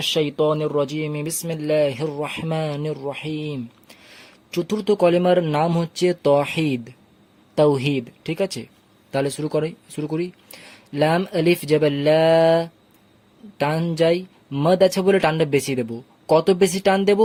শাইতানির রাজিম, বিসমিল্লাহির রহমানির রহিম। চতুর্থ কলেমার নাম হচ্ছে তাওহীদ, তাওহীদ। ঠিক আছে, তাহলে শুরু করি। লাম আলিফ জবর লা, টান যাই। মদ আছে বলে টানটা বেশি দেব। কত বেশি টান দেব?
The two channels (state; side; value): identical; both; correlation 1.00